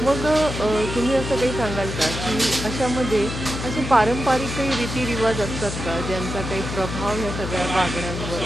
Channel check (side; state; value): left; noise; hum, 6 dB below the sound